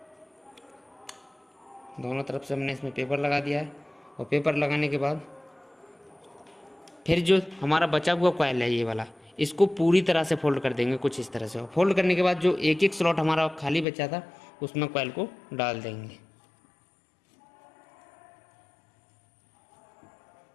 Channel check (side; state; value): right; drops out; at 13.9 s